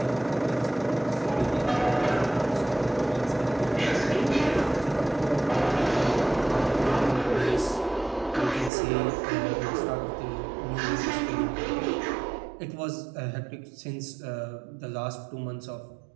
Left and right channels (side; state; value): left; drops out; at 8.7 s